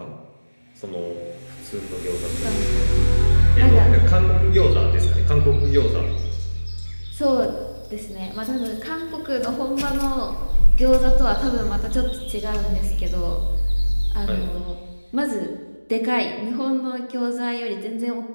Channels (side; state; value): both; inverted; correlation -1.00